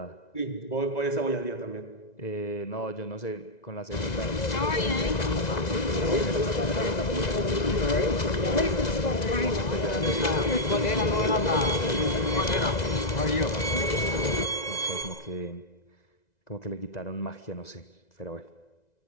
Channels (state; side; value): late; right; 2.0 ms